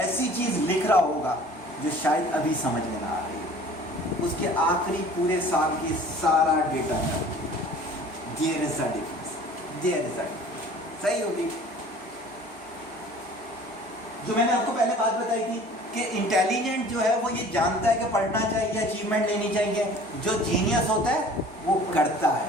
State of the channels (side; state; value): both; normal; correlation 0.47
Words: चीज लिख रहा होगा जो शायद अभी समझ में ना आ रही हो। उसके आखिरी पूरे साल की सारा डेटा है, there is a difference, there is a difference. सही होगी? जो मैंने आपको पहले बात बताई थी कि इंटेलिजेंट जो है वो ये जानता है कि पढ़ना चाहिए, अचीवमेंट लेनी चाहिए। जो जीनियस होता है वो करता